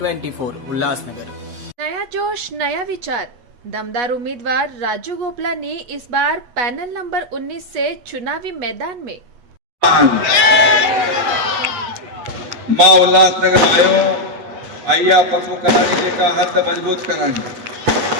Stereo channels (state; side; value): late; left; 8.3 ms